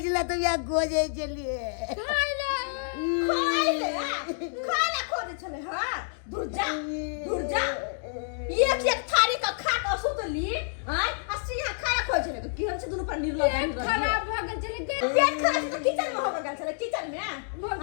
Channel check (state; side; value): silent; right; digital silence